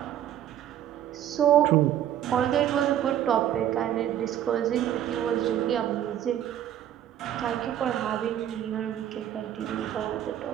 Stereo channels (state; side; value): quieter; left; 11.0 dB